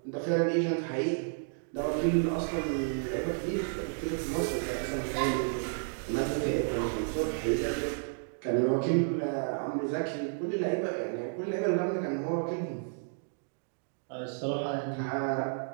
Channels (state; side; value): silent; left; digital silence